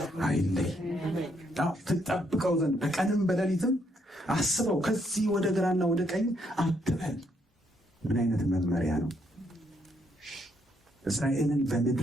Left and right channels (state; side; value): normal; both; correlation 0.73